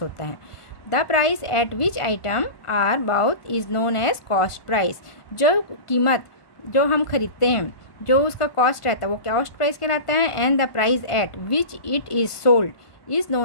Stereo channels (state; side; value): late; right; 1.5 ms